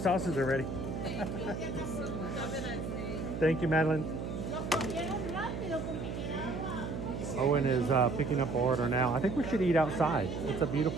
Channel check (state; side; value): noise; right; hum, 5 dB below the sound